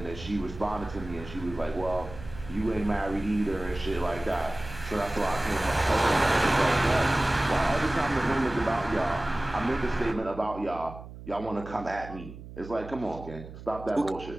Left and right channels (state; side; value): noise; right; hum, 14 dB below the sound